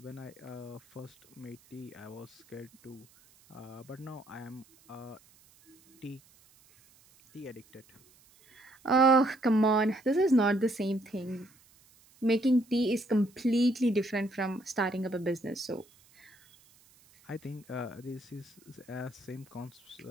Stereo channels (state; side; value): noise; right; hiss, 28 dB below the sound